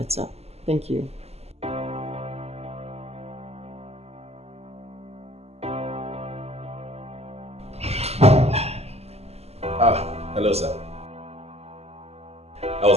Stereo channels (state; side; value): late; left; 0.30 ms